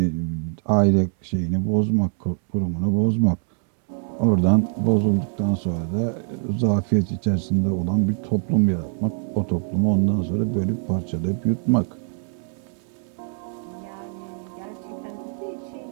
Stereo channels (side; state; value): left; silent; 59 dB below the other